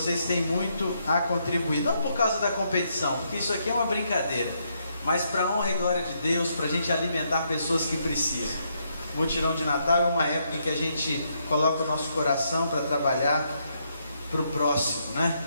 têm muito a contribuir, não por causa da competição, porque isso aqui é uma brincadeira, mas para a honra e glória de Deus, para a gente alimentar pessoas que precisam. O mutirão de Natal é uma época em que a gente coloca o nosso coração para trabalhar para o próximo, né?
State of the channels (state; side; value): inverted; both; correlation -0.76